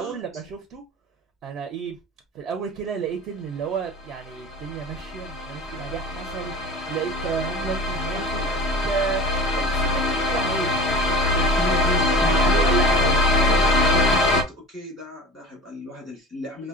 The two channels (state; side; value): normal; both; correlation 0.36